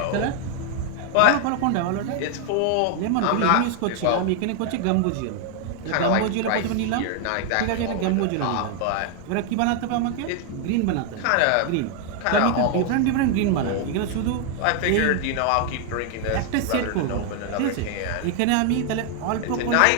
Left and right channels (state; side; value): different; both; correlation 0.00